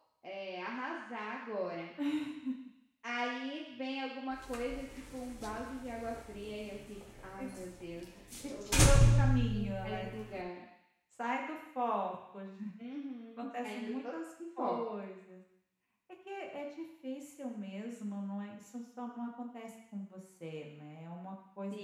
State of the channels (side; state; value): both; identical; correlation 1.00